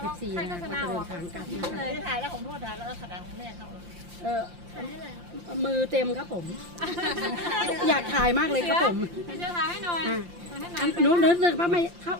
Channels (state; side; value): late; left; 5.7 ms